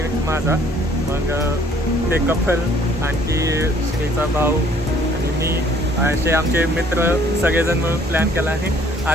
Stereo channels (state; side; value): normal; both; correlation 0.60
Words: माझा. मग ते कपल आणखी श्रीचा भाऊ आणि मी असे आमचे मित्र सगळेजण मिळून प्लॅन केला आणि